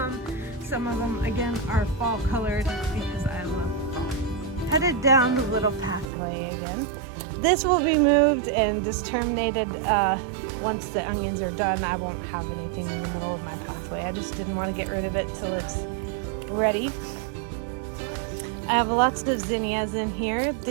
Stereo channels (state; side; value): drops out; left; at 6.1 s